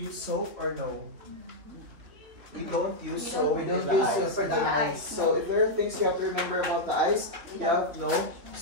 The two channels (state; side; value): late; left; 3.5 ms